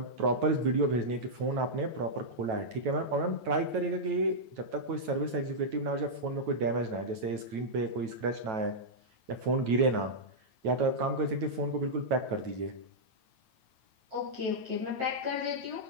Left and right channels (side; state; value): left; late; 9.1 ms